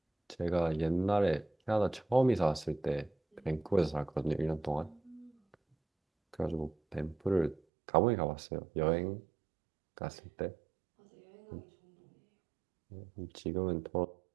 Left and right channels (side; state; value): left; drops out; at 7.6 s